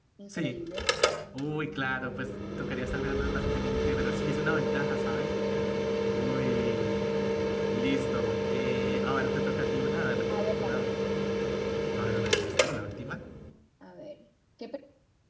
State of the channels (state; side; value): identical; both; correlation 1.00